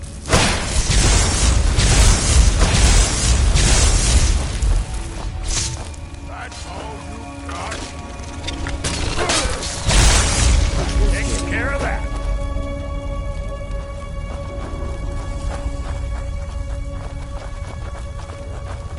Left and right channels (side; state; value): both; identical; correlation 1.00